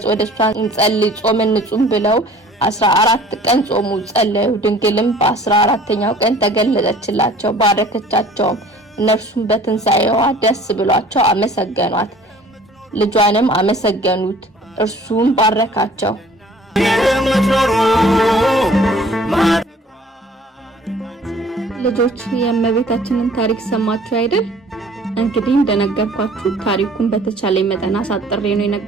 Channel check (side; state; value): both; normal; correlation 0.51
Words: ወደሷ እንጸልይ ጾም እንጹም ብለው 14 ቀን ጾሙ ጸለዩ። ድንግልም በ14ኛው ቀን ተገለጸችላቸው፣ ባረከቻቸውም። እነርሱም በትንሳኤዋ ደስ ብሏቸው አመሰገኗት። ልጇንም አመሰገኑት፣ እርሱም ባረካቸው። ልጆች የእመቤታችንን ታሪክ ሰማችሁ አይደል? እንግዲህ እንደነገርኳችሁ ታሪኩን በተቻለ መጠን አሳጥሬ ነው